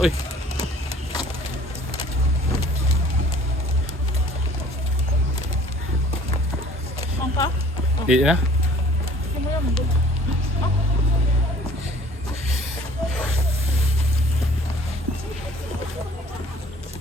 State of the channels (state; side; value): normal; both; correlation 0.53